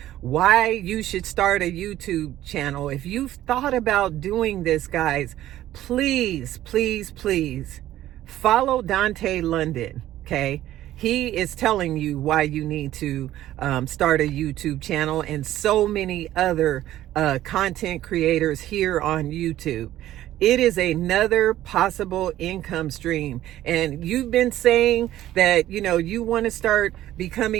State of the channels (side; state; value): left; quieter; 13.7 dB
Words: why you should start a YouTube channel, if you've thought about doing this, guys, please, please, please follow Dante London. Okay, he is telling you why you need to start a YouTube channel, and so many other content creators here on YouTube. It is another possible income stream. And you've been saying that, you want to start